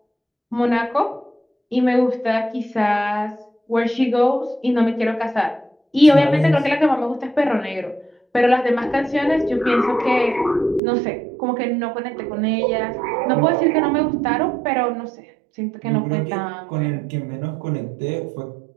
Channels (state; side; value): drops out; left; at 10.8 s